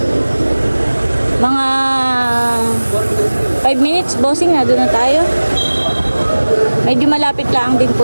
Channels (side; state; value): both; inverted; correlation -1.00